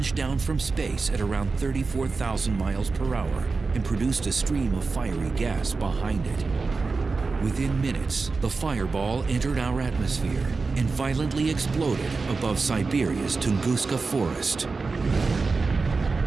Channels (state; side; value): quieter; left; 4.2 dB